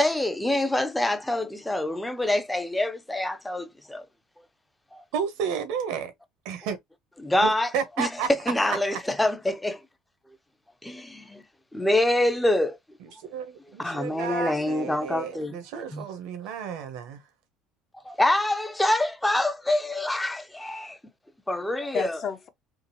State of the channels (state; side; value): normal; both; correlation 0.83